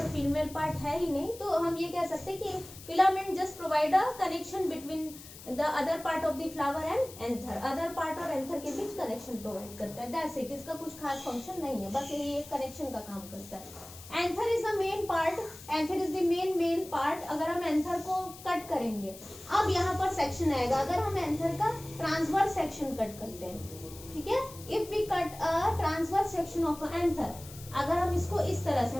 फीमेल पार्ट है ही नहीं, तो हम ये कह सकते हैं कि filament just provide a connection between the other part of the flower and anther. Other part और एंथर के बीच कनेक्शन प्रोवाइड करता है, दैट्स इट। इसका कुछ खास फंक्शन नहीं है, बस यही एक कनेक्शन का काम करता है। Anther is the main part, anther is the main part. अगर हम एंथर को कट करेंगे, अब यहाँ पर सेक्शन आएगा, अगर हम एंथर का ट्रांसवर्स सेक्शन कट करते हैं, ठीक है। If we cut a transverse section of anther, अगर हम इसको इस तरह से,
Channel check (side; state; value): left; noise; hiss, 16 dB below the sound